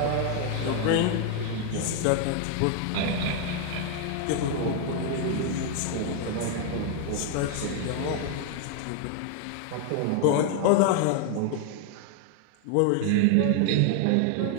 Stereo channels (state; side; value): different; both; correlation 0.00